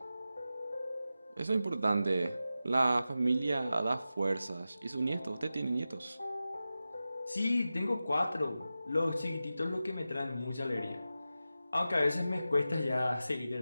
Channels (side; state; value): both; inverted; correlation -0.93